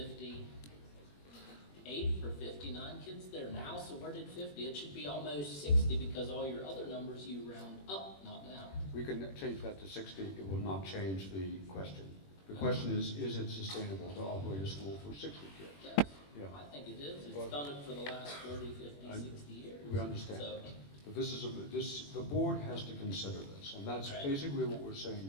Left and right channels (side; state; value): right; late; 21 ms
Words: or 59 kids there now, so where did 50? It should be almost 60 because all your other numbers you round up, not down. we can change that to 60. It will not change the question. The question is it sustainable to operate a school for 60 kids? Yes, Yeah. I think it is. It's Well, done it for the last 40, 50, 60 years. We understand. So, But the board has to consider this, and that's Right. basically what we're saying